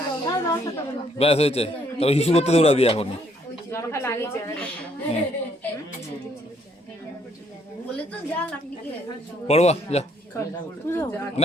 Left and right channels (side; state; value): both; normal; correlation 0.68